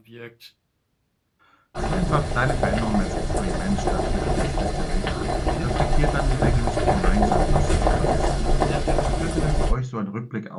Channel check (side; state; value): both; identical; correlation 1.00